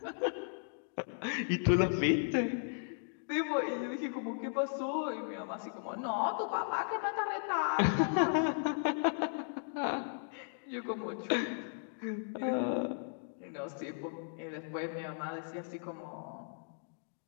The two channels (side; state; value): right; silent; digital silence